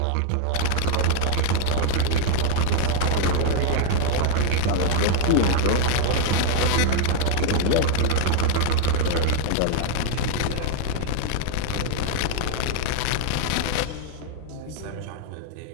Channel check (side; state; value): both; different; correlation 0.00